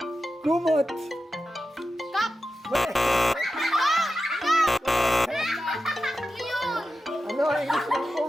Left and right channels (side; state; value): both; normal; correlation 0.91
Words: kumot? Cup. Mali. Yun. Ano ang English ng